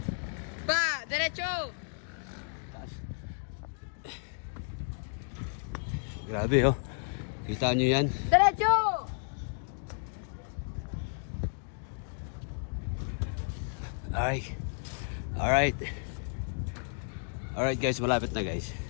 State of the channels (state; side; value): silent; right; 56 dB below the other